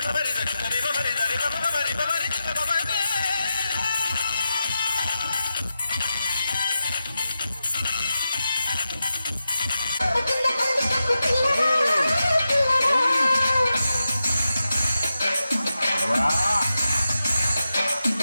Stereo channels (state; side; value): inverted; both; correlation -0.90